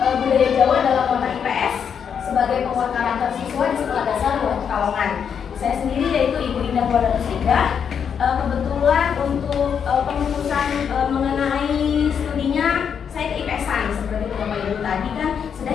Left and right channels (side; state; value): right; quieter; 7.4 dB